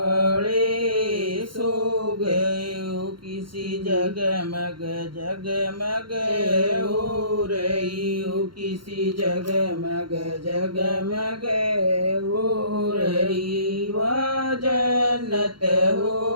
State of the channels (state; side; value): late; left; 0.73 ms